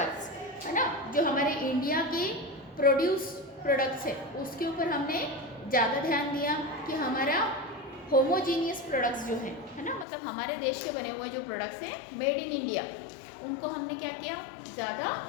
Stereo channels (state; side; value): drops out; right; at 10.1 s